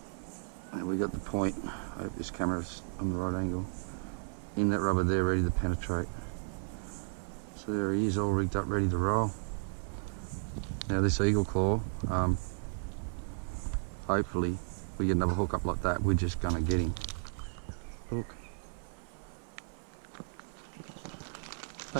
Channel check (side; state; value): left; silent; 55 dB below the other